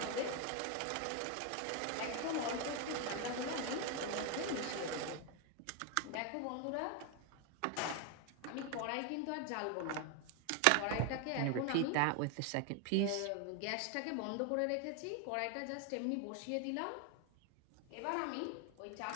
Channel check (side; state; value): both; different; correlation 0.01